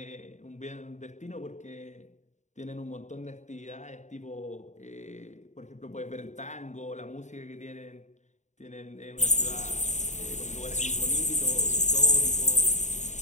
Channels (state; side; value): late; right; 0.34 ms